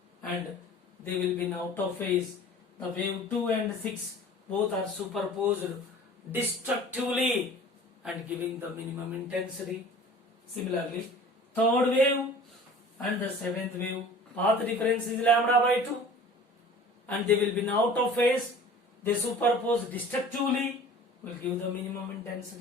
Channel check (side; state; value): both; normal; correlation 0.44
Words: and they will be in out of phase. The wave 2 and 6 both are superposed destructively and giving the minimum intensity. Similarly, third wave and the seventh wave, path difference is lambda by 2 and they will be in out of phase. They superpose destructively, will give the minimum